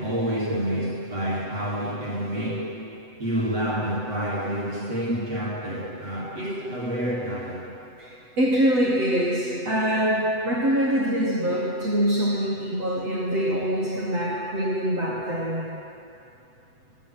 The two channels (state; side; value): late; left; 7.9 ms